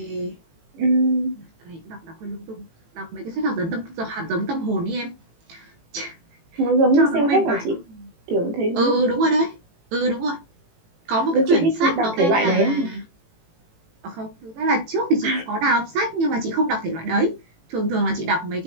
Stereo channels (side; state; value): left; late; 18 ms